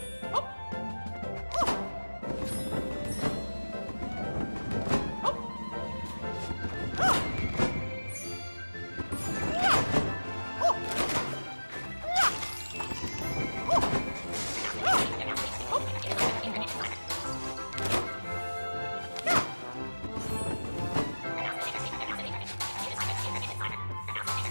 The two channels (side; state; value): both; inverted; correlation -1.00